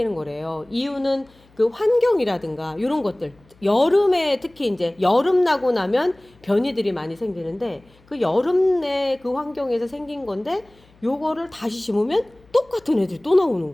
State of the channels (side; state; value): left; noise; hum, 30 dB below the sound